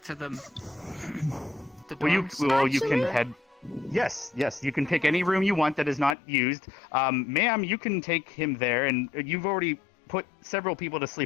to the dorms. You can head. Yes, you can pick any room you want that is not used. Ma'am, you can take him there, and you've already put several people to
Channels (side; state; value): right; drops out; at 6.2 s